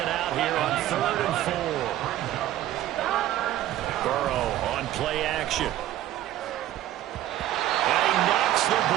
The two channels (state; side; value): quieter; left; 13.4 dB